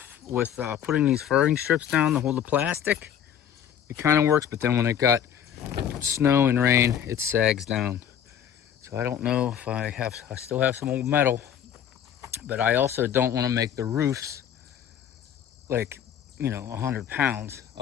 with putting these furring strips down to hold the plastic. It kind of works, but then when it got snow and rain, it sags down. So I don't know if I still have some old metal, but I also don't want to make the roofs like, 100 pounds.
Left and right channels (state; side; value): quieter; right; 9.3 dB